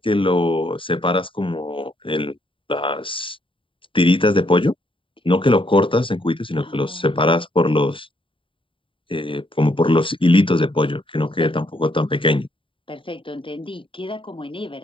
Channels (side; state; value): right; late; 0.25 ms